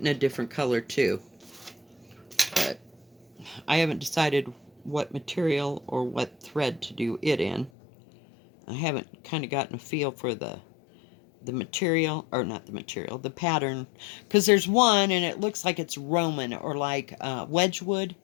a different color too. But I haven't decided what material or what thread to do it in. I haven't kind of gotten a feel for the material, or not the material, the pattern, because there's one and it looks like it's Roman or like Wedgwood,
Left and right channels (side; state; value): right; drops out; at 7.7 s